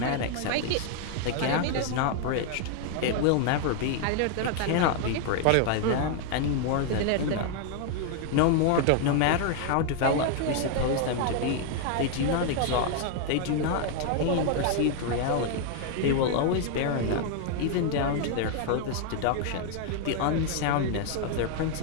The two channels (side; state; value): both; different; correlation 0.00